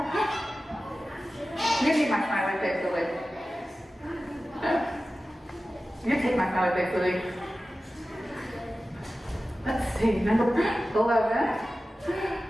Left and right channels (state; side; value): normal; both; correlation 0.95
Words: You need my smiley face, Olivia. You take my smiley face, Olivia. Let's see, number 11.